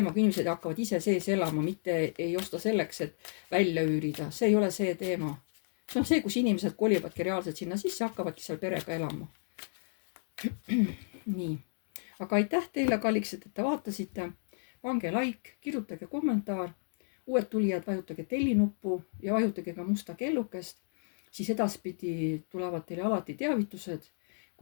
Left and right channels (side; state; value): right; silent; digital silence